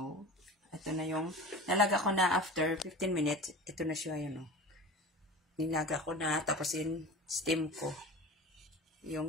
ito na yung, nalaga ko na after 15 minutes. Ito na siya, yun o. Nilaga ko na, tapos steam ko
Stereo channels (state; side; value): normal; both; correlation 0.34